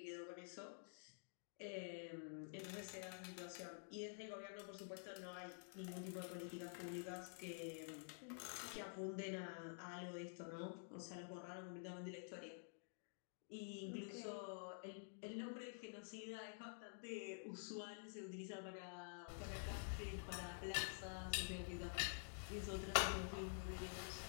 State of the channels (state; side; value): silent; right; digital silence